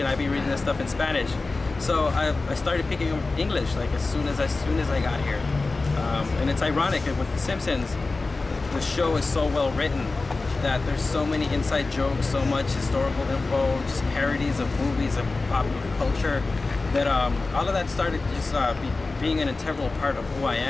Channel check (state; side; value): quieter; right; 3.6 dB